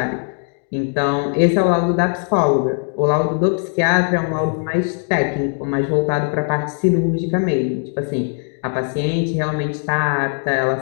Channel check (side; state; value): right; silent; 55 dB below the other